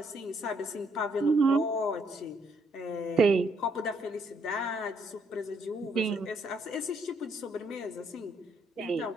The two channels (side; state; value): both; normal; correlation 0.71